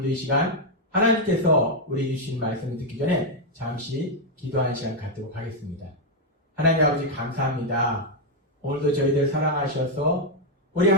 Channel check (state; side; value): normal; both; correlation 0.00